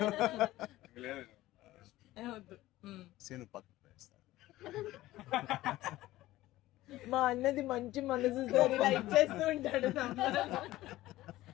లేదు. వద్దు. సీను పక్కన వేస్తాను. మా అన్నది మంచి మనసుతో లైక్ చేస్తూ ఉంటాడు.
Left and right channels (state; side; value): quieter; right; 16.4 dB